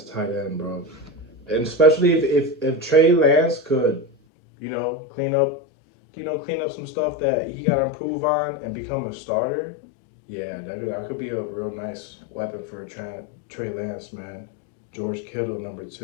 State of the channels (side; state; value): right; drops out; at 4.1 s